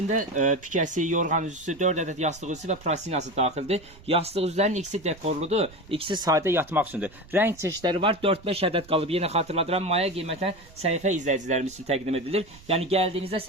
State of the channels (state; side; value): noise; right; rumble, 22 dB below the sound